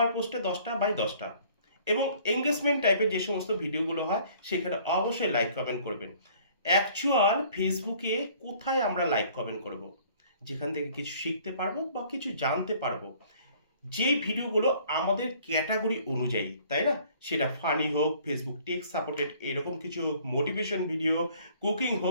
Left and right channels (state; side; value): inverted; both; correlation -0.56